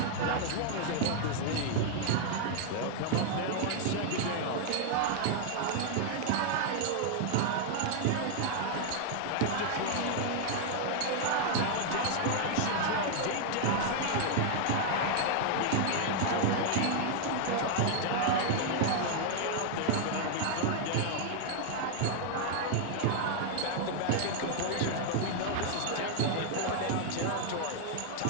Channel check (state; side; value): different; both; correlation 0.00